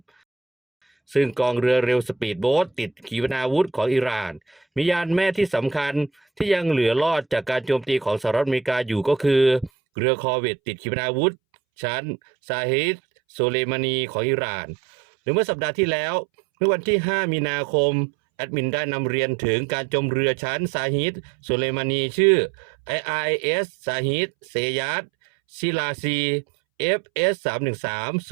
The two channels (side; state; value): left; drops out; at 9.7 s